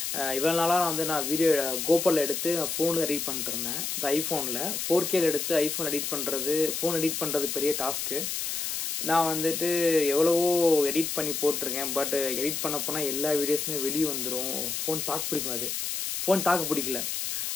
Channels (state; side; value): noise; left; hiss, 2 dB below the sound